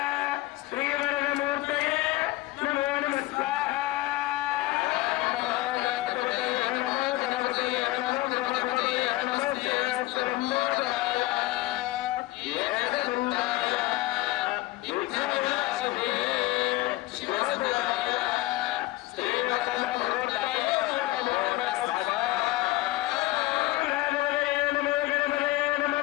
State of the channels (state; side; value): quieter; right; 18.8 dB